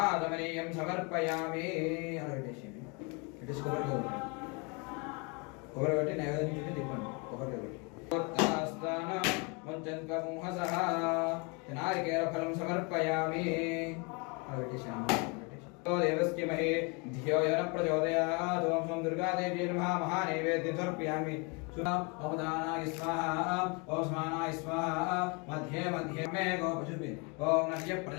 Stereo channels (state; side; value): quieter; right; 31.6 dB